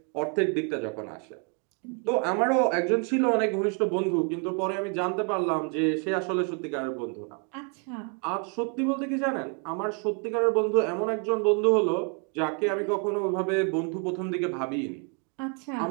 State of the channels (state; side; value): quieter; left; 37.1 dB